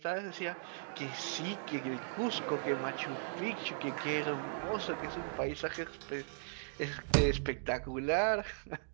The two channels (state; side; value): silent; left; digital silence